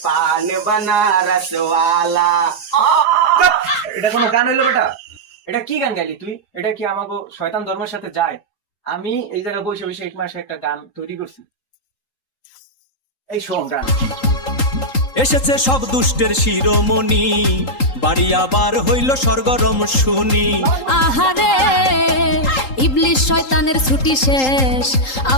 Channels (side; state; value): right; late; 3.8 ms